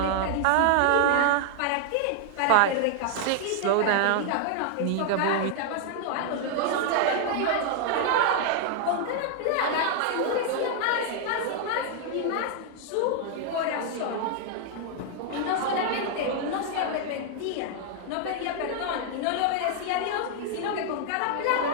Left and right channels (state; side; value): different; both; correlation 0.00